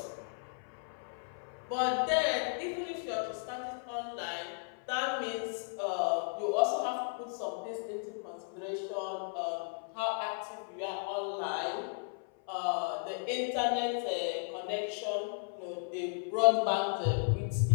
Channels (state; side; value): silent; right; 54 dB below the other